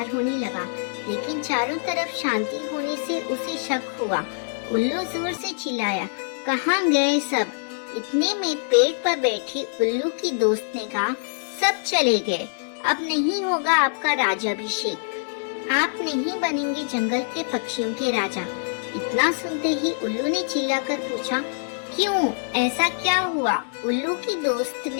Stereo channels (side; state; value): right; silent; digital silence